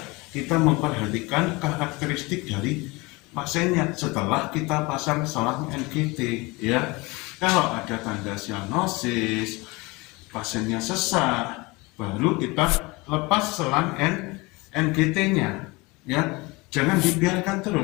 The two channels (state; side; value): quieter; right; 24.5 dB